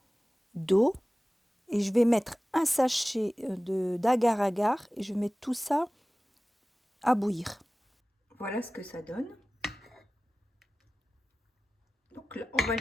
d'eau. Et je vais mettre un sachet d'agar-agar et je vais mettre tout ça à bouillir. Voilà ce que ça donne. Donc là, on va le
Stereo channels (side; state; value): both; normal; correlation 0.97